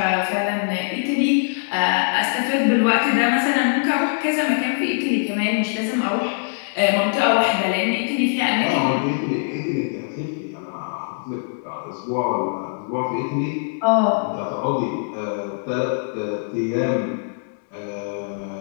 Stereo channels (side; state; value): right; silent; 64 dB below the other